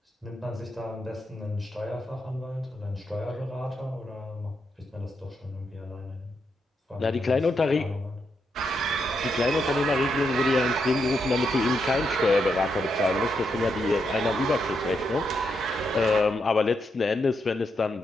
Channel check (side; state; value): both; normal; correlation 0.81